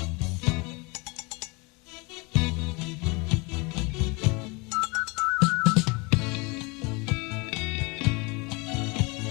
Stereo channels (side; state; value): right; quieter; 27.9 dB